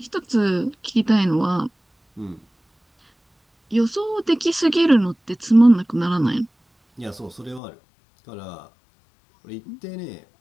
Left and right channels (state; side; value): drops out; right; at 7.6 s